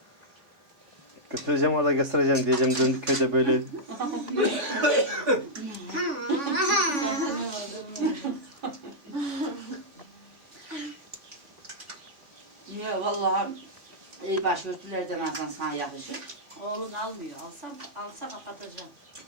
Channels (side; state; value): left; late; 3.5 ms